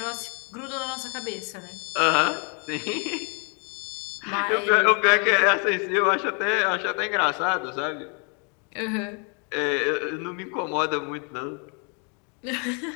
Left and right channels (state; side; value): quieter; right; 36.5 dB